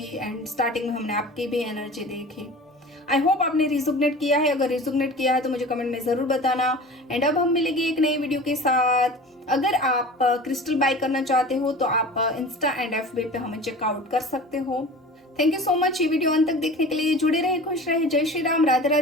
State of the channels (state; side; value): normal; both; correlation 0.38